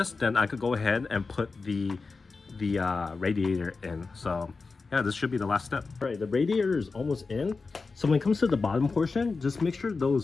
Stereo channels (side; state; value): right; quieter; 4.2 dB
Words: then I could go ahead and put the radiator in. So yeah, this should be the last step. All right, the radiator is almost in. So when it comes to the bottom portion, just make sure